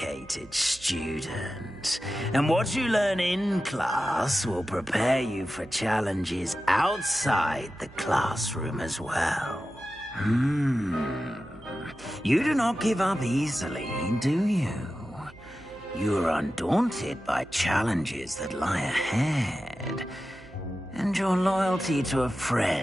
student. And what you learn in class will prepare you for challenges outside the classroom as well. You do not give up easily, do you? You are undaunted by challenges that lie ahead. And your loyalty to a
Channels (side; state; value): right; noise; hum, 22 dB below the sound